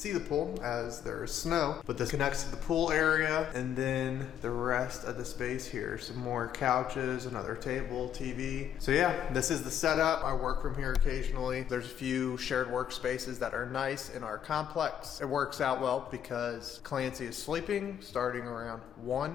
the pool as there's snow, but this connects to the pool area. And then the rest of the space here, some more couches, another table, TV. So yeah, this is the setup. I work from here occasionally. There's a few shared workspaces that are nice in our complex. It works out well because Clancy is sleeping starting around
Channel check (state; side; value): quieter; right; 9.5 dB